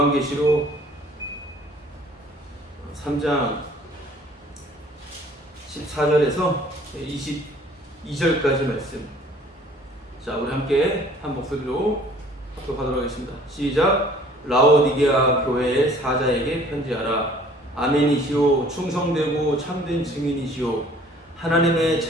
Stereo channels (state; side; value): normal; both; correlation 0.54